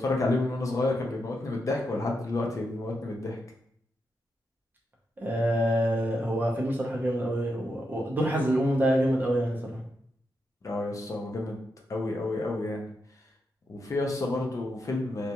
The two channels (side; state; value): both; normal; correlation 0.84